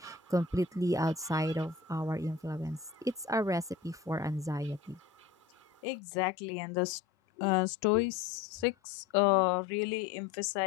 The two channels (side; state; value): right; quieter; 5.6 dB